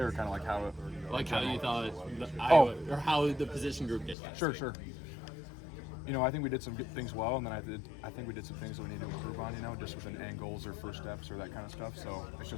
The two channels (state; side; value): drops out; right; at 4.2 s